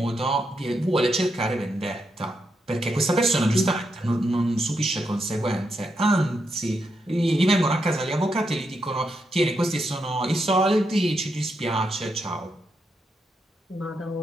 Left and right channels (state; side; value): normal; both; correlation 0.83